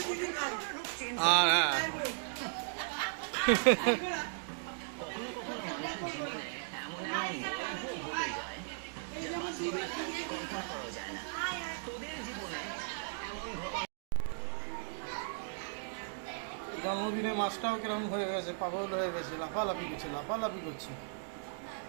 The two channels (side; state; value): left; silent; digital silence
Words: আর হ্যাঁ জন্মদিনে মাছটাও কিরকম হয়ে গেছে, পাগল হয়ে গেছে, লাফালাফি করছে, লাফালাফি করছে।